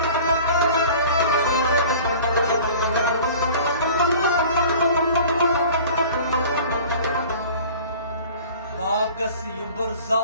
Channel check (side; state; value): both; inverted; correlation -0.44